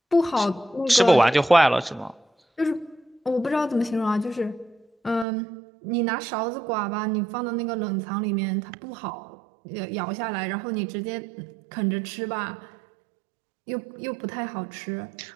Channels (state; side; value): drops out; left; at 5.2 s